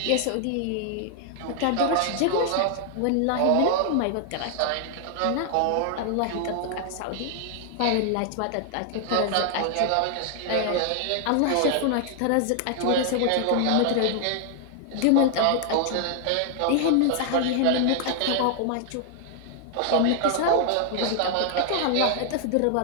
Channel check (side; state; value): both; different; correlation 0.00